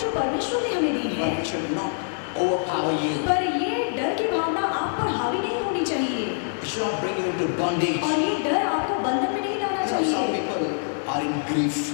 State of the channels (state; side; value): silent; right; digital silence